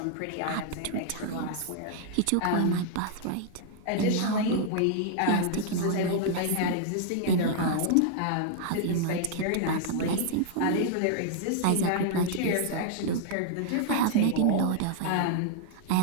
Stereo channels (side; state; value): both; different; correlation -0.01